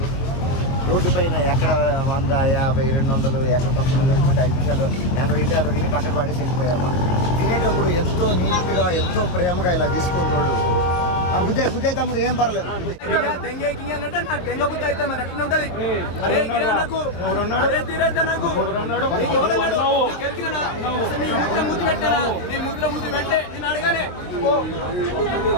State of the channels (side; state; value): right; late; 23 ms